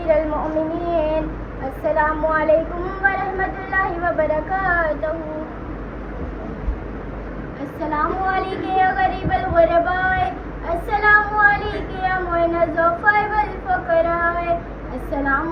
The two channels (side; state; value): both; identical; correlation 1.00